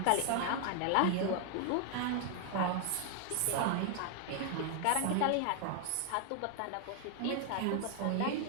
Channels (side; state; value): both; different; correlation 0.00